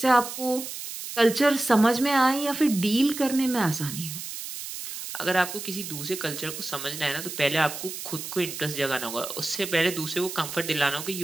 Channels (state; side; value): noise; right; hiss, 8 dB below the sound